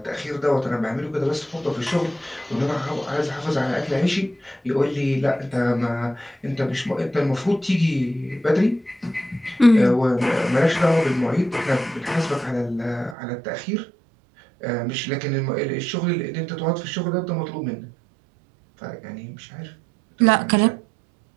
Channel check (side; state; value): left; drops out; at 13.2 s